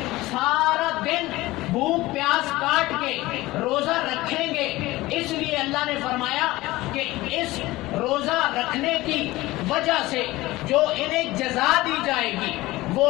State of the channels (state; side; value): quieter; right; 18.8 dB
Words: سارا دن بھوک پیاس کاٹ کے روزہ رکھیں گے، اس لیے اللہ نے فرمایا کہ اس روزہ رکھنے کی وجہ سے جو انہیں جزا دی جائے گی، وہ